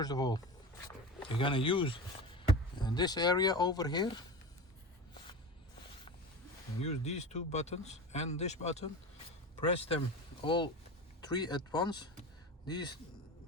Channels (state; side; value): normal; both; correlation 0.29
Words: of all, you're going to use this area over here, and use these two buttons and this button. Press them all three at once, these